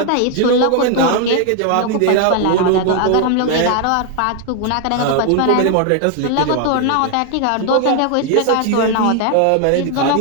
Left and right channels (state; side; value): different; both; correlation 0.00